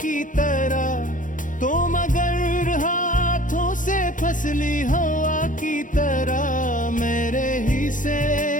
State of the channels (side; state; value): right; late; 0.38 ms